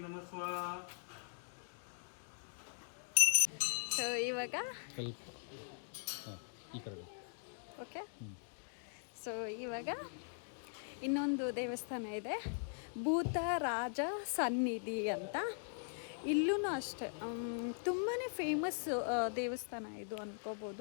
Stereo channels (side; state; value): right; silent; digital silence